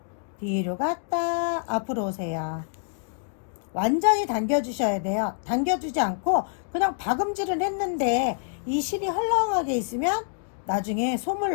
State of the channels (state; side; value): silent; right; digital silence